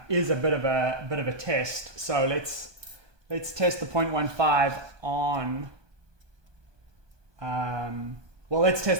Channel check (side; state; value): left; late; 1.2 ms